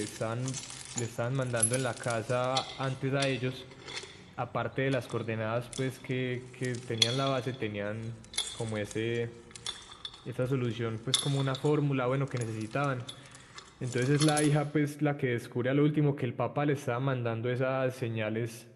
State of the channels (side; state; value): both; identical; correlation 1.00